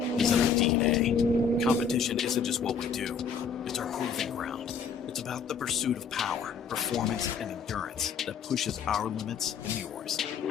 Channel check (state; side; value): quieter; right; 6.1 dB